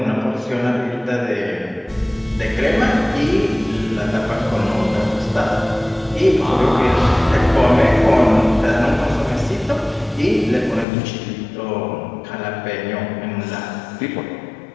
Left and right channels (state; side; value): drops out; right; at 10.9 s